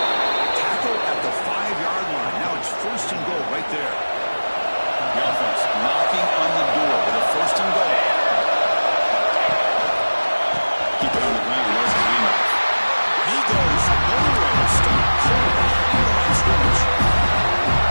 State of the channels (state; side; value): inverted; both; correlation -1.00